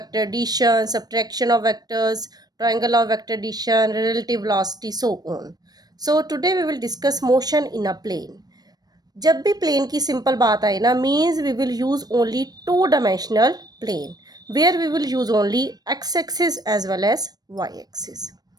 addition, subtraction of vectors, triangle of vector addition, relative velocity, so on. So today we will discuss motion in a plane. जब भी plane की simple बात आए ना means we will use only two dimensional plane where we will use only X axis as well as Y axis.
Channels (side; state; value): left; late; 0.19 ms